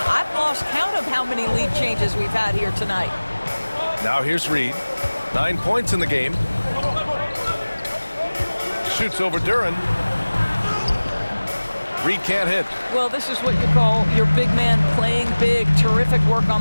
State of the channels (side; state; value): both; inverted; correlation -1.00